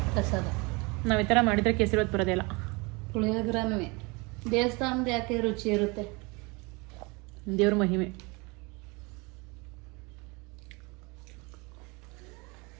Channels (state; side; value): quieter; left; 27.6 dB